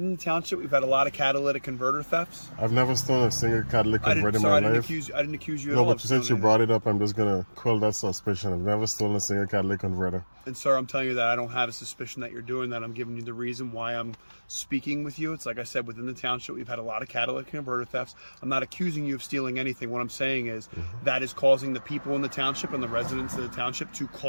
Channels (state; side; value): inverted; both; correlation -1.00